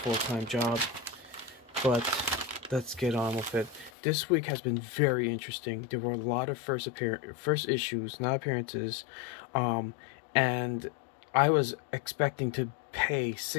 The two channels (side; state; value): right; drops out; at 3.9 s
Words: job. But let's get on with it. This week has been very interesting. There were a lot of first issues, not appearances, and I was expecting to pay